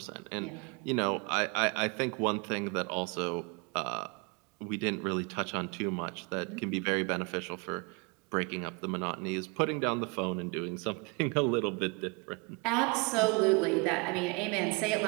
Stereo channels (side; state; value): left; quieter; 30.8 dB